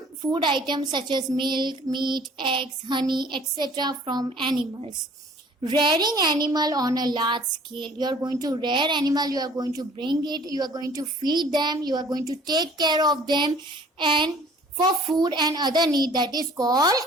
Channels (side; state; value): both; normal; correlation 0.52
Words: food items such as milk, meat, eggs, honey, etc. from animals. Rearing animal on a large scale. You are going to rear animal, you are going to bring it, you are going to feed them, you are going to take care of them, and for food and other need, that is called